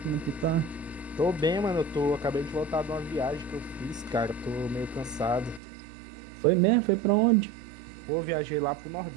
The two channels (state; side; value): drops out; left; at 5.6 s